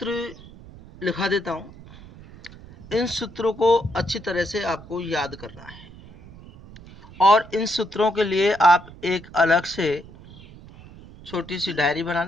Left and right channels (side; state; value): right; noise; rumble, 19 dB below the sound